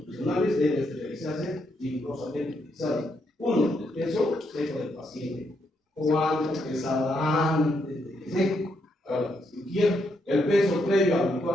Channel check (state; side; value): normal; both; correlation 0.78